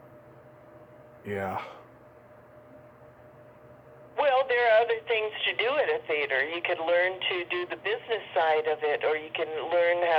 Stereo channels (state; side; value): identical; both; correlation 1.00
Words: Yeah. Well, there are other things to do at a theater. You could learn to do the business side of it, or you can learn